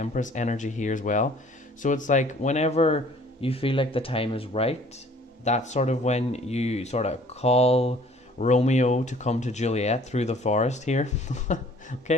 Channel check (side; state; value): both; normal; correlation 0.54